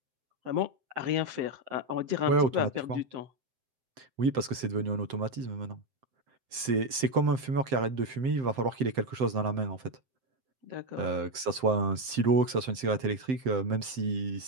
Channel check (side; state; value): left; late; 7.7 ms